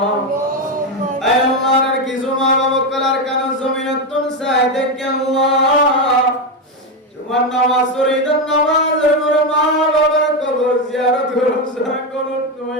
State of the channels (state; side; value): normal; both; correlation 0.10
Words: আয় আল্লাহর কিছু মা বাবা কলার কান জমিনতুন সাই দেখে আল্লাহ তোমার নামাজ পড়িদান নামাজের পর মা বাবার কবর জিয়ারত করুন সারা করুন